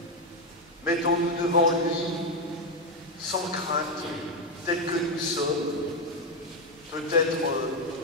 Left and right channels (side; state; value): both; normal; correlation 0.06